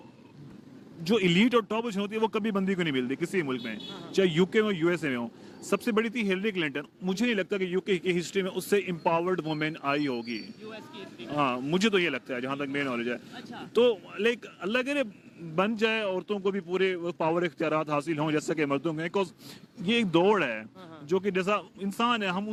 जो इलीट और टॉप होती है वो कभी बंदी को नहीं मिलती किसी मुल्क में, चाहे यूके में यूएसए में हो। सबसे बड़ी थी हिलरी क्लिंटन। मुझे नहीं लगता कि यूके की हिस्ट्री में उससे एम्पावर्ड वुमेन आई होगी। हाँ, मुझे तो ये लगता है, जहाँ तक मेरी नॉलेज है। अच्छा। तो लाइक अल्लाह करे बन जाए, औरतों को भी पूरे पावर इख्तियारात हासिल हों जैसे कि मर्दों में, बिकॉज ये एक दौड़ है जो कि जैसा इंसान है, हम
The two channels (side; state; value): both; identical; correlation 1.00